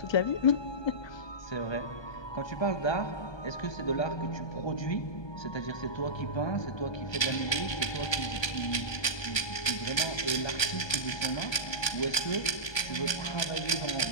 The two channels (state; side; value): late; right; 1.2 ms